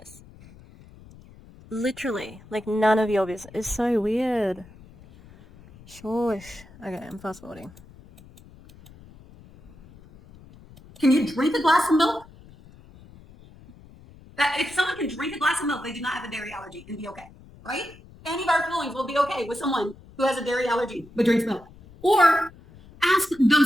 Literally, like none of your business. It's so weird. Shush. Okay, I'm fast forwarding. Can you drink a glass of milk? If someone can drink a glass of milk, they do not have a dairy allergy and be okay, right? Any of our feelings will be okay with someone who has a dairy allergy but drinks milk. Or ask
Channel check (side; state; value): left; noise; rumble, 22 dB below the sound